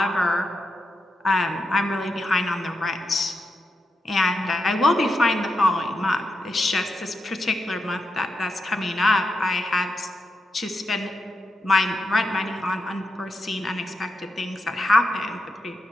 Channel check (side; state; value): both; normal; correlation 0.86